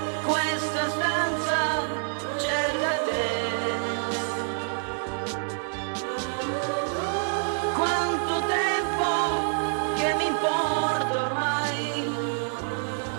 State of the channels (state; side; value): silent; left; 60 dB below the other